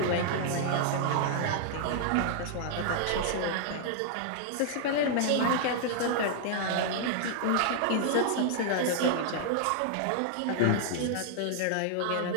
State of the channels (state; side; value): different; both; correlation -0.01